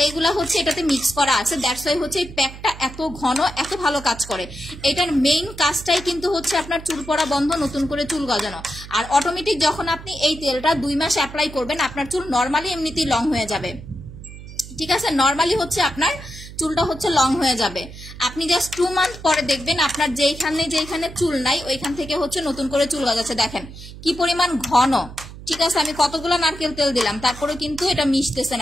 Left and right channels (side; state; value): right; noise; hum, 14 dB below the sound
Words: এইগুলা হচ্ছে এটাতে মিক্স করা আছে। দ্যাটস ওয়াই হচ্ছে এই প্যাকটা এত ঘন, এত ভালো কাজ করে। এটার মেইন কাজটাই কিন্তু হচ্ছে আপনার চুল পড়া বন্ধ, নতুন করে চুল গজানো। আর অটোমেটিক যখন আপনি এই তেলটা 2 মাস অ্যাপ্লাই করবেন, আপনার চুল নর্মালি এমনিতেই লং হয়ে যাবে। ঠিক আছে, নর্মালি হচ্ছে আপনার চুলটা হচ্ছে লং হয়ে যাবে। আপনি জাস্ট 2 মান্থ পরে দেখবেন আপনার যেখানে চুল নাই ওইখান থেকে হচ্ছে নতুন করে চুল গজাচ্ছে। দেখেন কি পরিমাণ ঘন। ঠিক আছে, আমি কতগুলো নারকেল তেল দিলাম, তারপরে কিন্তু এটা মিশতেছে